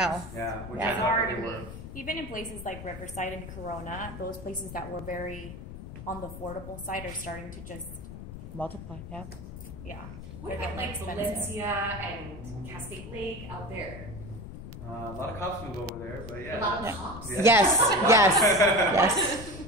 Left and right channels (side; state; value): left; noise; rumble, 11 dB below the sound